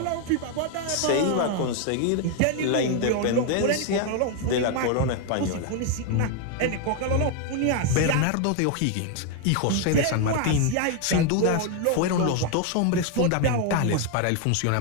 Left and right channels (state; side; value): different; both; correlation 0.01